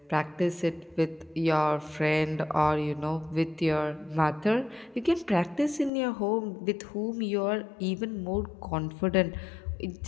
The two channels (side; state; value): right; drops out; at 5.9 s